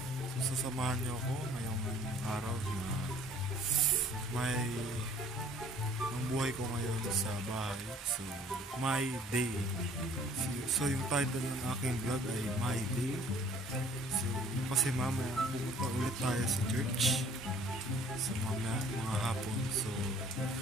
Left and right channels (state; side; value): normal; both; correlation 0.55